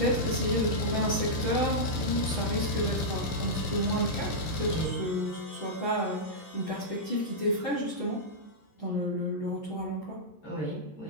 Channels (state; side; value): late; right; 13 ms